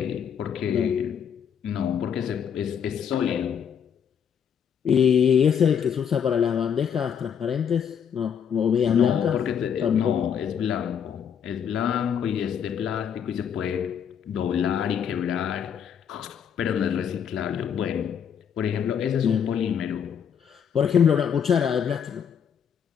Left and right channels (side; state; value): right; quieter; 7.9 dB